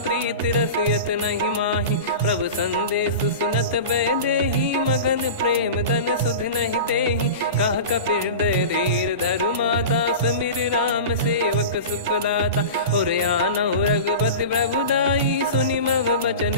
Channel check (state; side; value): inverted; both; correlation -0.31